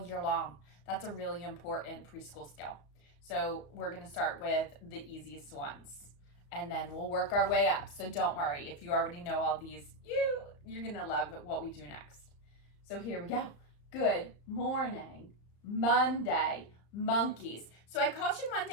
year long. That's a really important preschool skill. So we're going to start with the easiest ones, and then we'll work our way up. So don't worry. If you already know all these, you're going to love what we do next. So here we go. Good morning, Monday, monkeys. So I called you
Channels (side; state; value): right; late; 35 ms